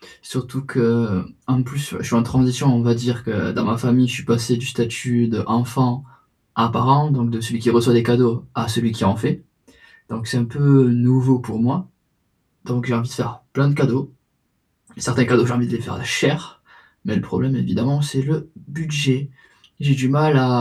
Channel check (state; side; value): identical; both; correlation 1.00